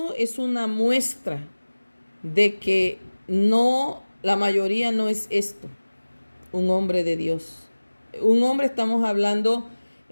es una muestra de que la mayoría no es esto, un hombre de Dios. Un hombre, estamos hablando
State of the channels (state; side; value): inverted; both; correlation -1.00